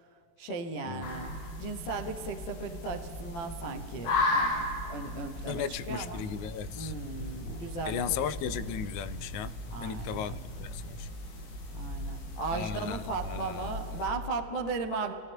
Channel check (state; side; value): late; right; 19 ms